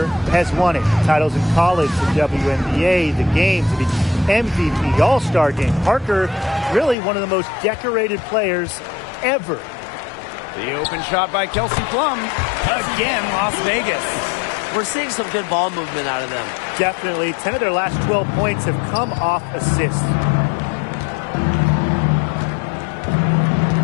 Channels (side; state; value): right; drops out; at 7.0 s